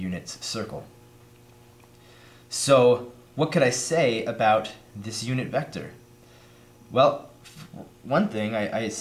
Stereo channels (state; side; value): identical; both; correlation 1.00